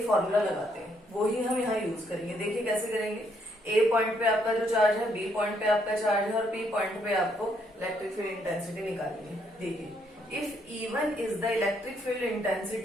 फॉर्मूला लगाते हैं, वो ही हम यहाँ यूज करेंगे। देखिए कैसे करेंगे। ए पॉइंट पे आपका जो चार्ज है, बी पॉइंट पे आपका चार्ज है, और पी पॉइंट पे आपको इलेक्ट्रिक फील्ड इंटेंसिटी निकालनी है। देखिए, if E1 is the electric field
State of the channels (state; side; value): normal; both; correlation 0.72